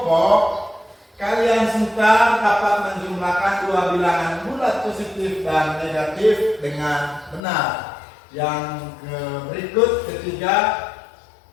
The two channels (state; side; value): drops out; right; at 7.4 s